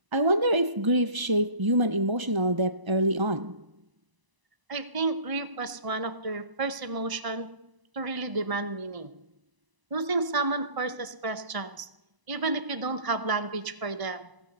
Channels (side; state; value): left; late; 1.0 ms